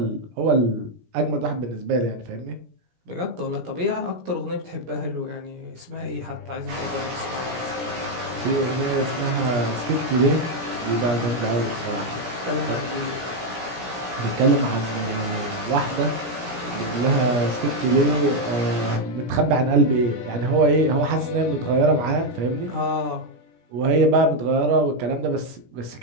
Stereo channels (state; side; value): late; left; 17 ms